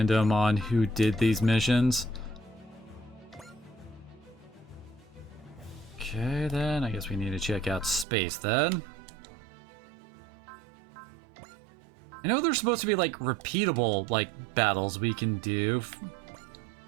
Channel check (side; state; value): left; drops out; at 8.1 s